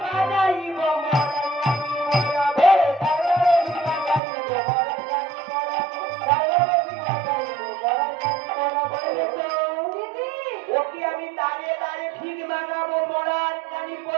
ওকে আমি দাঁড়িয়ে দাঁড়িয়ে ঠিক মানাবো মরার কানি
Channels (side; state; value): left; drops out; at 4.2 s